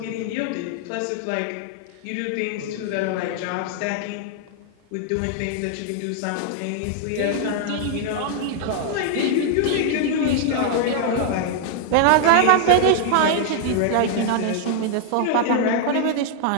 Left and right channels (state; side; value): different; both; correlation 0.00